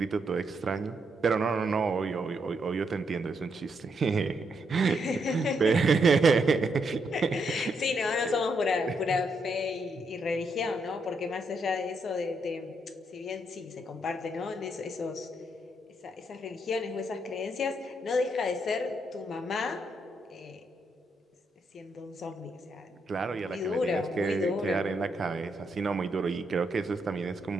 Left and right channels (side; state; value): both; normal; correlation 0.78